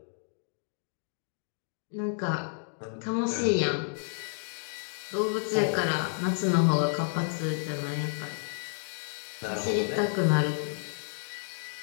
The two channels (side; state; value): right; silent; digital silence